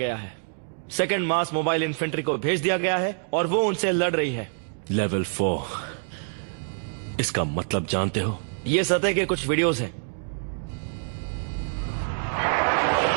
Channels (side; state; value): left; silent; digital silence